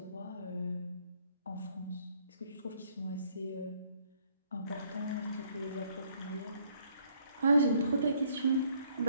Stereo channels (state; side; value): inverted; both; correlation -0.65